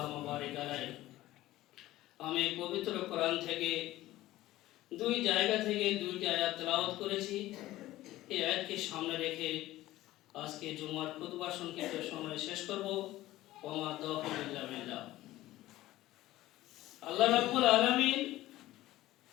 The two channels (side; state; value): right; quieter; 16.0 dB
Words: বারিক আলাইহি। আমি পবিত্র কোরআন থেকে দুই জায়গা থেকে দুইটি আয়াত তেলাওয়াত করেছি। এই আয়াতকে সামনে রেখে আজকে জুমার খুতবা সংক্ষিপ্ত সময় শেষ করব। ওমা তাওফীক ইল্লা বিল্লাহ। আল্লাহ রাব্বুল আলামিন